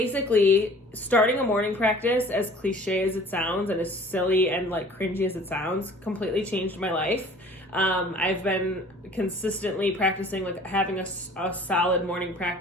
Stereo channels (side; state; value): both; normal; correlation 0.49